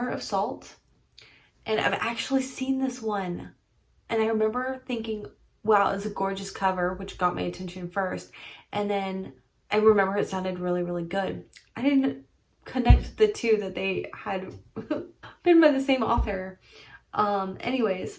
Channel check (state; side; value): identical; both; correlation 1.00